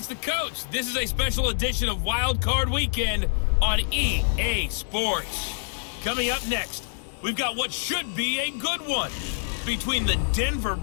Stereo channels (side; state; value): right; silent; digital silence